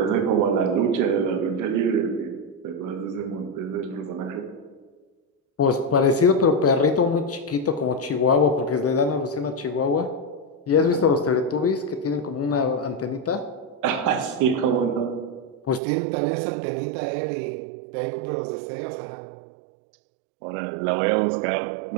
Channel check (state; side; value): drops out; left; at 15.8 s